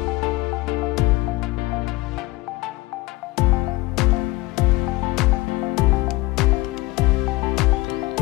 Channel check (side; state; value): right; quieter; 20.3 dB